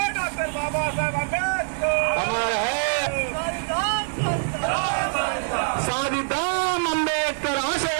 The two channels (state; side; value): silent; left; digital silence